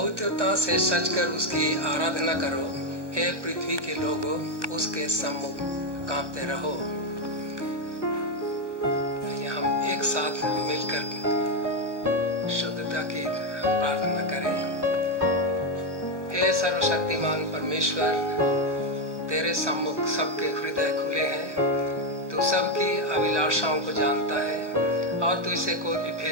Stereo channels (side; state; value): left; late; 1.0 ms